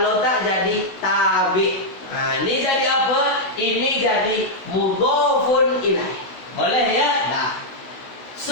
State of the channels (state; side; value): late; right; 16 ms